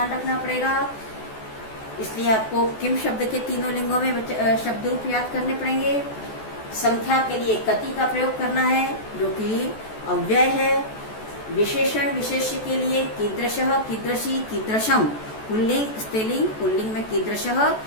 रखना पड़ेगा। इसलिए आपको किम शब्द के तीनों लिंगों में शब्द रूप याद करने पड़ेंगे। संख्या के लिए कति का प्रयोग करना है, जो कि अव्यय है। विशेषण विशेष्य के लिए कीदृशः, कीदृशी, कीदृशम, पुल्लिंग स्त्रीलिंग, पुल्लिंग में कीदृशः,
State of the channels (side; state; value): right; late; 14 ms